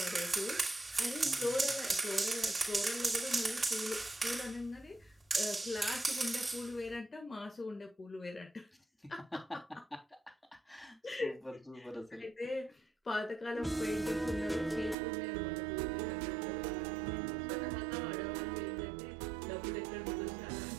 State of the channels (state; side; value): drops out; left; at 15.0 s